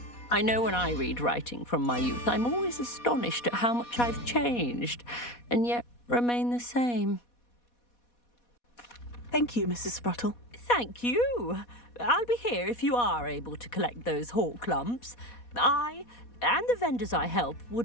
I know when I read writing from my youth, I'm always astonished at how much I've changed, and yet remain the same. Thank you, Mrs. Spruttle. Thank you. I'll be here if you are able to collect those hawk lumps. I, and the vendors I help,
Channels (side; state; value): right; late; 4.2 ms